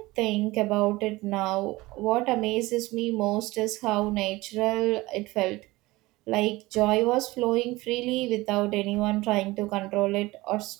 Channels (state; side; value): quieter; left; 20.2 dB